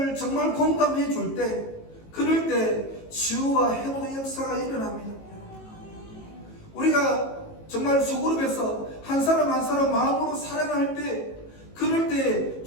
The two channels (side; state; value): right; late; 18 ms